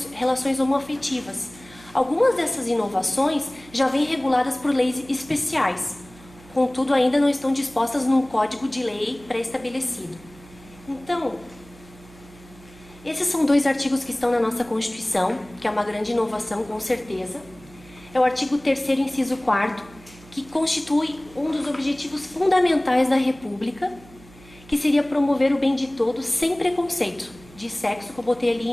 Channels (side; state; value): right; noise; hum, 22 dB below the sound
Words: relações homoafetivas. Algumas dessas inovações já vêm reguladas por leis especiais, contudo ainda não estão dispostas num código de lei pré-estabelecido. Então, esses são 2 artigos que estão na nossa Constituição, que é uma grande inovação, com certeza. É o artigo 3º, inciso 4º, que constitui um dos objetivos fundamentais da República, que seria promover o bem de todos sem preconceito de sexo, que eu botei